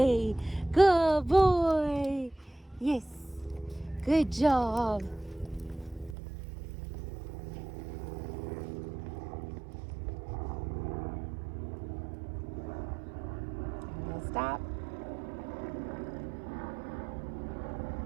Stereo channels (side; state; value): left; drops out; at 6.2 s